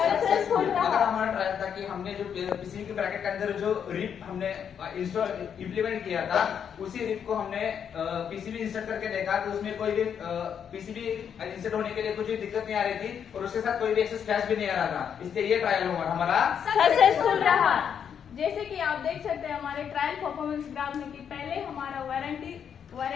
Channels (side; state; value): right; quieter; 7.9 dB